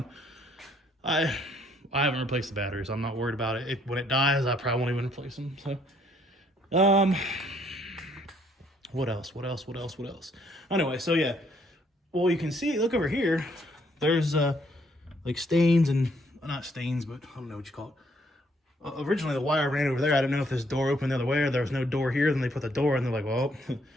I haven't replaced the batteries. I'm not worried about it. When it dies, I probably won't even replace them. So, what else? Anyway, so yeah. Well, you can see, look over here. There's like stains and, not stains, but I don't know what you call it. Originally the wire ran over there. I didn't know if this door opened the other way or there was no door here. Then they put the door and they're like, well,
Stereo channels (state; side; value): normal; both; correlation 0.68